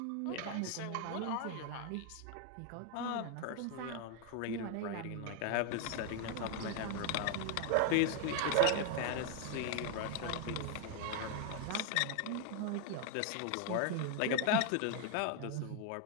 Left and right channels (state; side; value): different; both; correlation 0.01